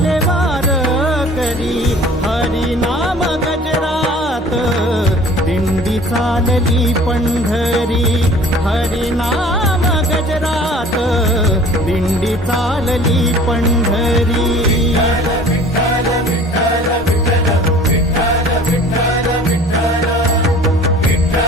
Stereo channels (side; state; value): both; normal; correlation 0.47